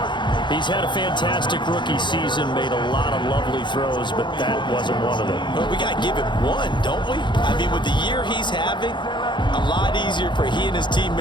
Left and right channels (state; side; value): late; right; 0.23 ms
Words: He's had a fantastic rookie season, made a lot of lovely throws, but that wasn't one of them. Well, we got to give him one, don't we? I mean, with the year he's having, a lot easier for he and his